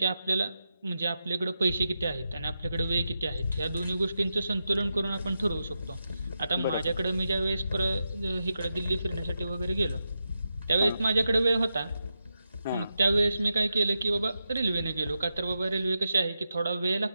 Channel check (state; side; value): inverted; both; correlation -0.89